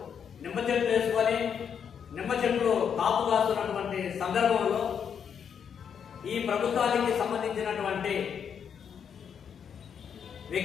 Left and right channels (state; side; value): quieter; right; 7.6 dB